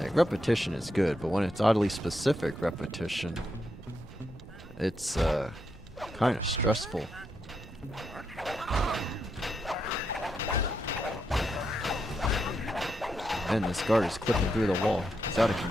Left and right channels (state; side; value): normal; both; correlation 0.82